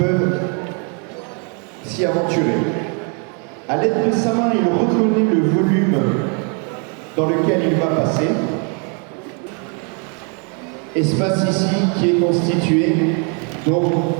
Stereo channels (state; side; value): quieter; left; 37.8 dB